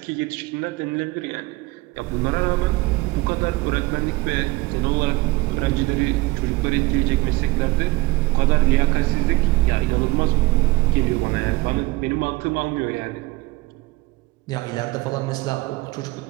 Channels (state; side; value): quieter; left; 21.6 dB